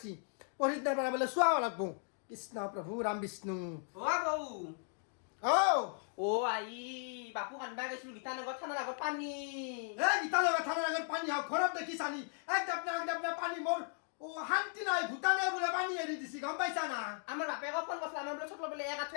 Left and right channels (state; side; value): silent; right; 53 dB below the other